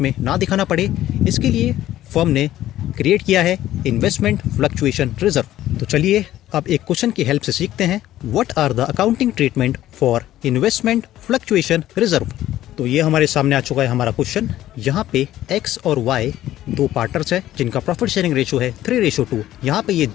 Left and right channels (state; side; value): quieter; right; 13.6 dB